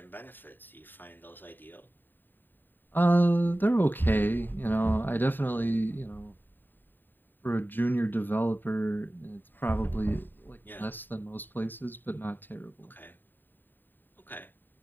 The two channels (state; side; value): late; right; 0.092 ms